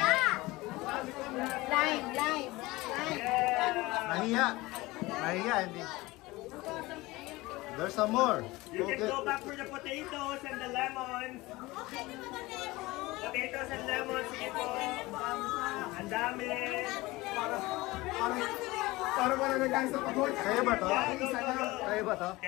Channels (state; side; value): quieter; right; 20.6 dB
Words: Lime. Nahiya. Nahiya, hindi. There's some more. You can go back for the potatoes and the lemons. Potatoes and lemons, sige po. Ang dami. Para wala na guys sa pagod. Kaya ba to? Yeah, go. Kaya ba to?